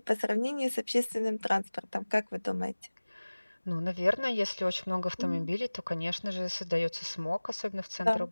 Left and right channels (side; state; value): both; inverted; correlation -1.00